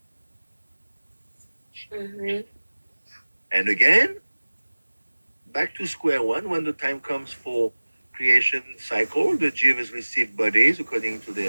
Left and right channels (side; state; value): both; inverted; correlation -1.00